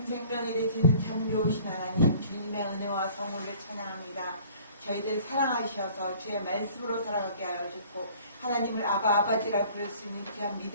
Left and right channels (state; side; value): inverted; both; correlation -0.51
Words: 생명이 되시는 참 좋으신 하나님, 주님의 은혜와 성호를 찬양합니다. 저희들 사랑하셔서 주의 말씀으로 살아가게 하여 주셨고, 하나님을 아버지라 부를 수 있는 귀한